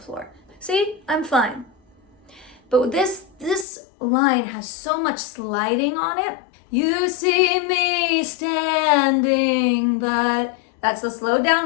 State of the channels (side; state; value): right; drops out; at 3.7 s